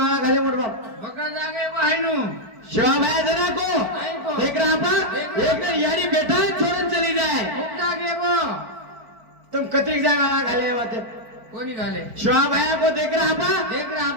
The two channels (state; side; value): late; left; 4.5 ms